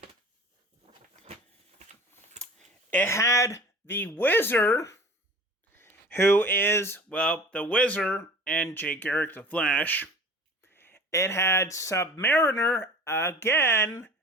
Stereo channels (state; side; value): normal; both; correlation 0.42